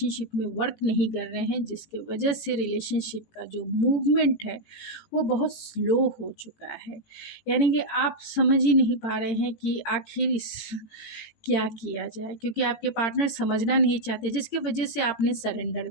में वर्क नहीं कर रहे हैं, जिसकी वजह से रिलेशनशिप का जो मूवमेंट है वो बहुत स्लो हो चुका है। यानी कि आप समझ ही नहीं पा रहे हैं कि आखिर इस क्या किया जाए, क्योंकि आपके पार्टनर समझना नहीं चाहते, जिसकी वजह से आपने सरेंडर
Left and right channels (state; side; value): late; right; 18 ms